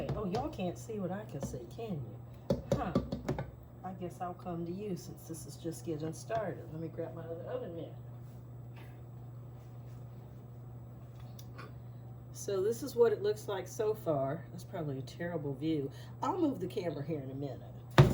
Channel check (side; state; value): both; identical; correlation 1.00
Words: Oh, y'all can't see what I can see, can you? Huh. I guess I'll come to you since this is just getting started. Let me grab my other oven mitt. So this is what it looks like so far. That's probably a terrible view. I'll move the camera here in a minute.